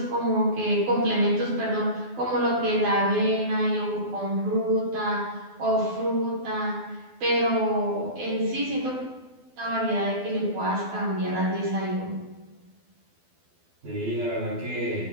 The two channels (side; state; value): left; late; 12 ms